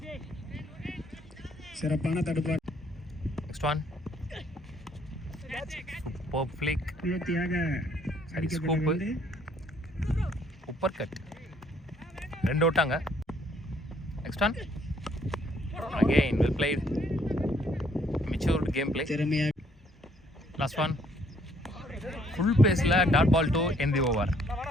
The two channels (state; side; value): normal; both; correlation 0.65